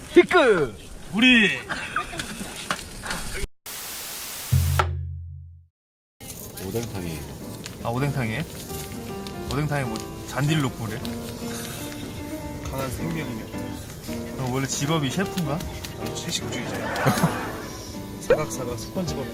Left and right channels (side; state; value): both; identical; correlation 1.00